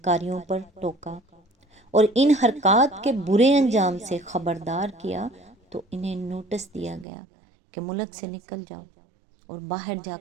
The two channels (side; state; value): left; drops out; at 7.1 s